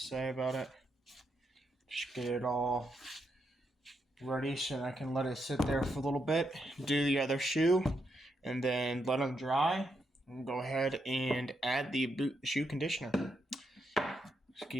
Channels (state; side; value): normal; both; correlation 0.81